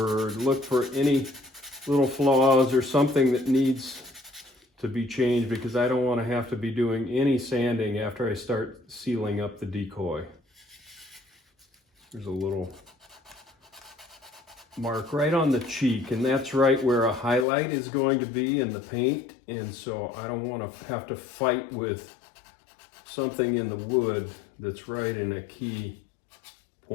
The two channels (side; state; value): right; drops out; at 17.4 s